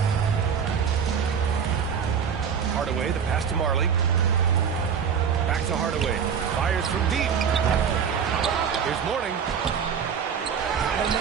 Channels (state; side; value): quieter; left; 7.2 dB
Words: Hardaway, the pass to Marley. Back to Hardaway. Fires from deep. Here's Morning. Not